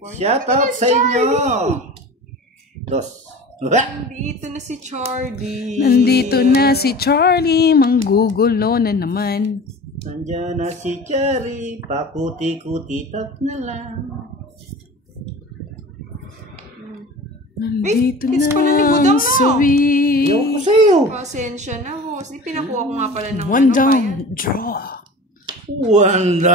Shout out sa inyo. Dos. Nandito na si Charlie. Nandito na si Charlie. Manggugulo na naman. Nandiyan na si Cherry. Pakuti-kuti tap na lang. Nandito Ay, it's pala ni na Budang ang na. sawi. Ayaw ko sa'yo. Pasensya na, boss. Di pinakuha ko nga pala ng One ano, down, bayan. draw. One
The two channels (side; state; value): both; normal; correlation 0.38